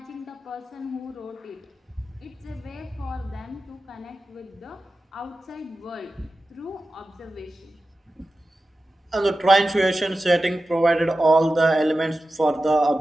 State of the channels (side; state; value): both; normal; correlation 0.93